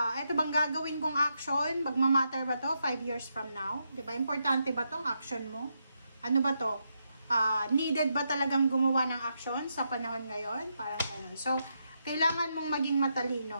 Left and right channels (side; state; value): both; inverted; correlation -0.82